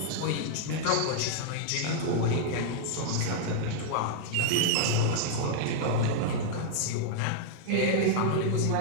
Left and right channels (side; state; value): both; different; correlation -0.01